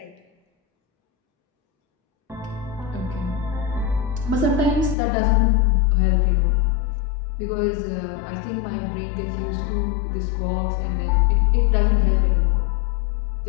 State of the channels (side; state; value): right; drops out; at 5.0 s